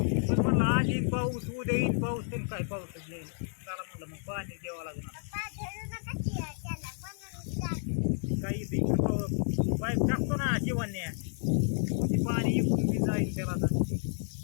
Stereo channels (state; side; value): silent; right; 57 dB below the other